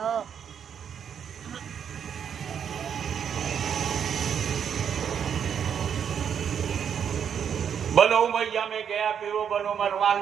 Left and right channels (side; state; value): left; quieter; 8.0 dB